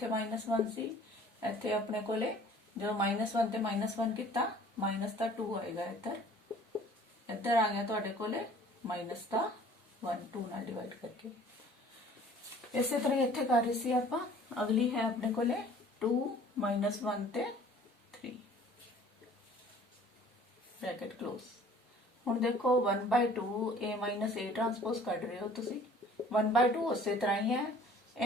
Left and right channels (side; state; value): both; normal; correlation 0.51